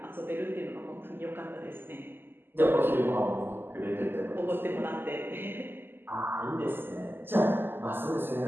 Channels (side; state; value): left; late; 0.10 ms